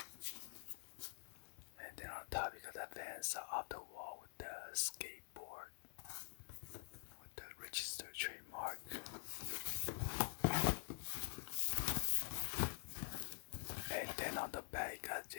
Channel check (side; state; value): right; silent; digital silence